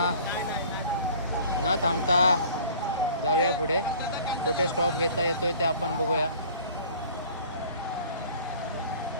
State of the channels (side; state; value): both; inverted; correlation -0.49